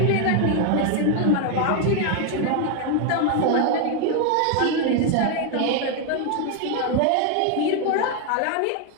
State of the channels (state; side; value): different; both; correlation 0.01